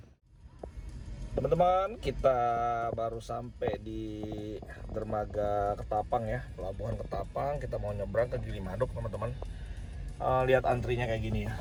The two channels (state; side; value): identical; both; correlation 1.00